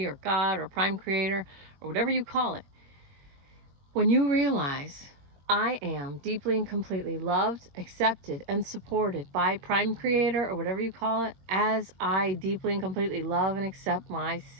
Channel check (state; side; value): late; left; 21 ms